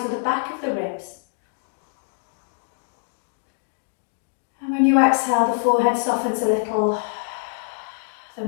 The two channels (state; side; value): silent; right; digital silence